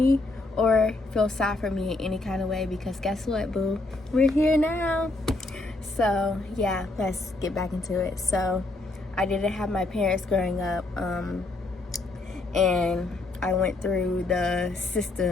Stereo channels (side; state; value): right; quieter; 3.0 dB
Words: or feel sad for me in any kind of way, because guess what, boo? We're here now. So yeah, let's get back into it. So I didn't have my parents growing up, and I went through the